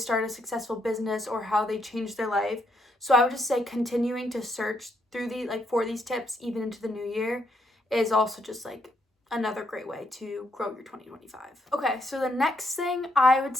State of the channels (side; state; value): both; normal; correlation 0.75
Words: a successful business or how they change their life. So I would just say continuing to search through the like for these tips even into the new year is also just like another great way to grow your 2025. Okay, so the next thing I would